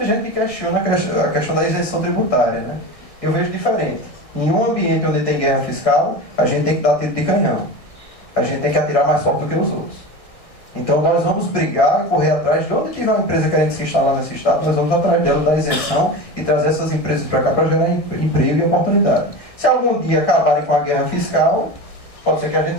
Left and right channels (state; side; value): late; right; 1.6 ms